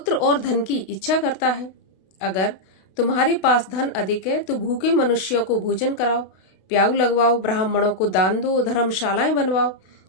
और धन की इच्छा करता है। अगर तुम्हारे पास धन अधिक है तो भूखे मनुष्यों को भोजन कराओ, प्याऊ लगवाओ, ब्राह्मणों को दान दो, धर्मशालाएं बनवाओ,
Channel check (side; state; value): right; late; 32 ms